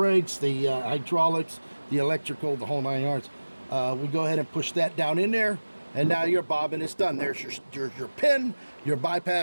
the hydraulics, the electrical, the whole 9 yards. We go ahead and push that down in there, and now your bobbin is done. There's your pin. Your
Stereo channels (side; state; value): both; inverted; correlation -1.00